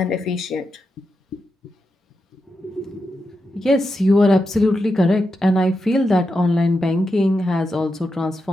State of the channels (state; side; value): normal; both; correlation 0.87